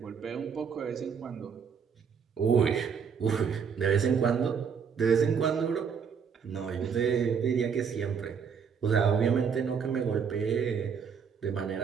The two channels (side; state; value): left; quieter; 6.7 dB